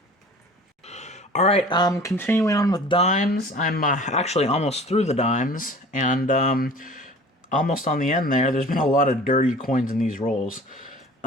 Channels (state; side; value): normal; both; correlation 0.45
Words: All right, continuing on with dimes. I'm actually almost through the dimes, and almost on the end there. There's been a lot of dirty coins in these rolls.